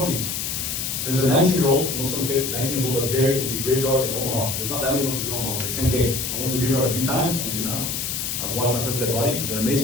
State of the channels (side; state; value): left; noise; hiss, 2 dB below the sound